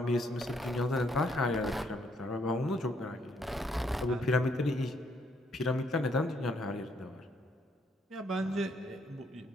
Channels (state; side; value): normal; both; correlation 0.71